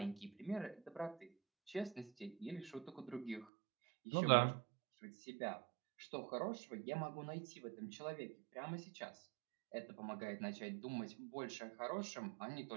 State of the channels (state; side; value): drops out; left; at 3.5 s